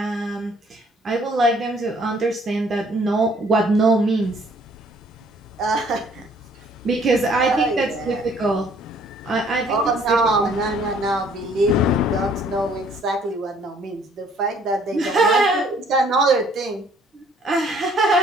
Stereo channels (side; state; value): both; normal; correlation 0.60